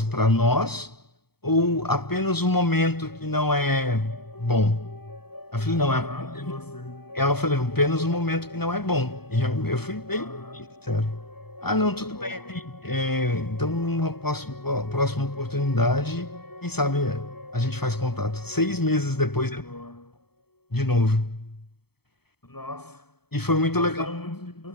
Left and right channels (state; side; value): late; right; 0.96 ms